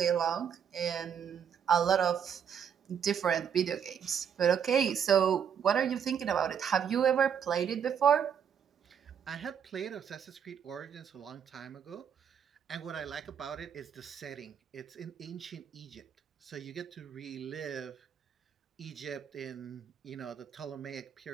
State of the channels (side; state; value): left; quieter; 8.0 dB